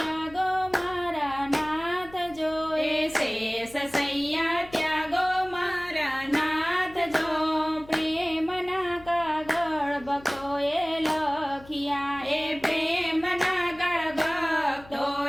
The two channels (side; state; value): left; noise; hum, 21 dB below the sound